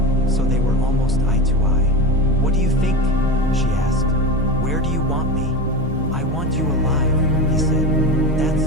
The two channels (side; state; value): both; normal; correlation 0.25